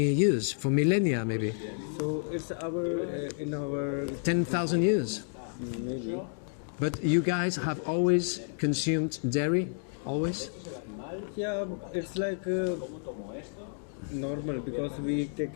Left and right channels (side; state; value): right; silent; 57 dB below the other